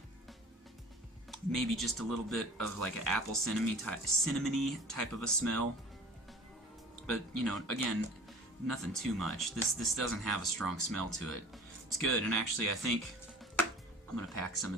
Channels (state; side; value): normal; both; correlation 0.43